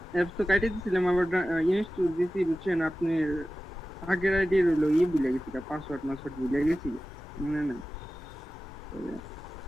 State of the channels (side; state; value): both; normal; correlation 0.95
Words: অ্যাপস তো কাটিয়ে দিয়েছিলাম, আবার ইনস্টল দিয়েছি বুঝছেন। আপনি আগের আইডি রইলো ভুলে গেছি, পাসওয়ার্ড ভুলে গেছি, মনে নাই।